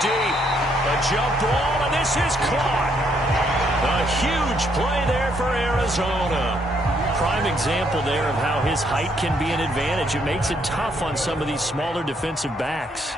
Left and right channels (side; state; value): both; normal; correlation 0.71